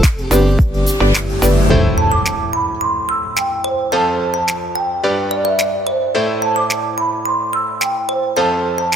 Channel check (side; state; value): both; normal; correlation 0.73